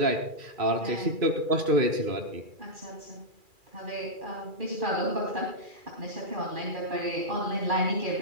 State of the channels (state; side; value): late; left; 2.4 ms